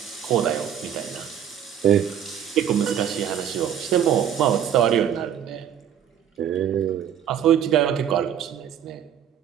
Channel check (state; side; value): quieter; left; 9.4 dB